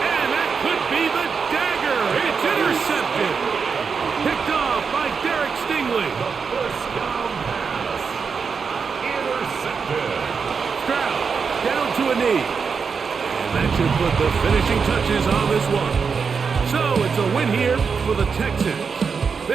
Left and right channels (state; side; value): quieter; left; 5.7 dB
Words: that could be the dagger. It's intercepted. Picked off by Derek knee. And that should put the finishing touches on this one. So it's a win here for the Texans.